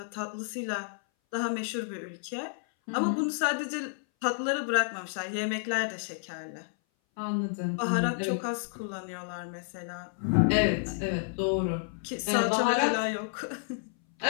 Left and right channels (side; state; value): right; silent; 58 dB below the other